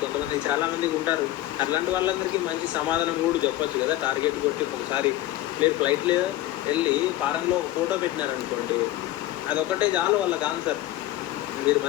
కొంతమంది, చాలామందికి ఉంటారు. అట్లాంటి వాళ్ళందరికీ మంచి సమాధానం కూడా చెప్పొచ్చు కదా. టార్గెట్ కొట్టి ఒకసారి మీరు ఫ్లైట్లో వెళ్ళి ఫారెన్లో ఒక ఫోటో పెట్టినారనుకోండి, అదొక్కటే చాలు వాళ్ళకి ఆన్సర్. మీరు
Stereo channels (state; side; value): quieter; right; 15.3 dB